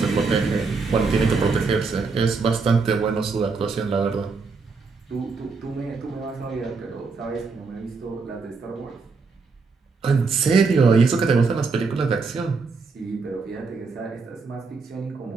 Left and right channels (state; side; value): quieter; left; 4.5 dB